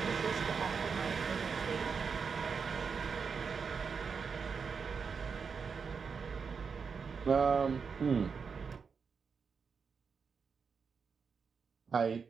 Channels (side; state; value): left; quieter; 5.7 dB